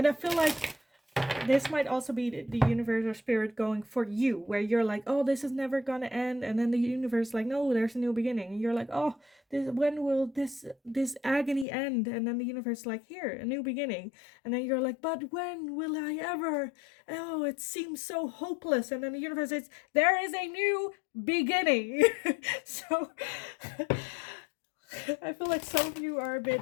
I feel like this might also be the universe or spirit going for you, where you're like, oh, this is never gonna end, and then the universe like, no, there's a new beginning, and you're like, oh, when will this agony end? And then the universe like, here, a new beginning. And then you're like, but when will I ever? Oh, it seems so hopeless. And then the universe says, there is a new beginning. So I feel like some of you are a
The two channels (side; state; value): right; drops out; at 11.7 s